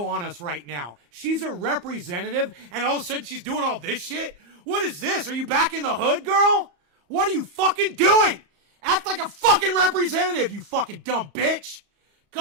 on us right now? She's a representative, and all of a sudden she's doing all this shit? What is this? Are you back in the hood, girl? What are you fucking doing? Act like a fucking representative, you fucking dumb bitch.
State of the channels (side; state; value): left; late; 34 ms